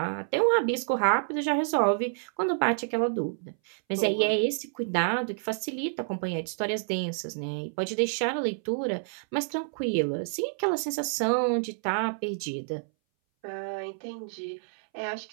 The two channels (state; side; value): silent; left; 59 dB below the other